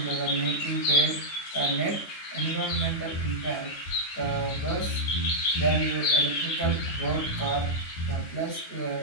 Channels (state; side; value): late; right; 9.2 ms